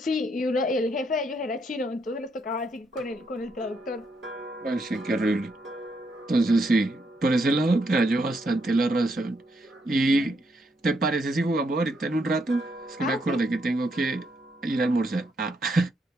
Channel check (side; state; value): both; normal; correlation 0.77